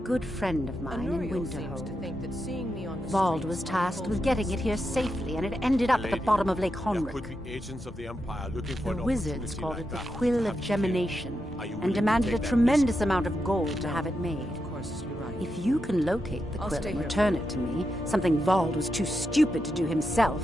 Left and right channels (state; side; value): normal; both; correlation 0.86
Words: friend of mine in Winterhold. Vald was tasked with getting it here safely, and it ended up at the bottom of Lake Honric. Agents of the Empire looking for The wizards called it the Quill of Gemination, and demanded a tremendous amount of gold to have it made. If you can locate the quill and return it to me, something Vald was too stupid to do himself,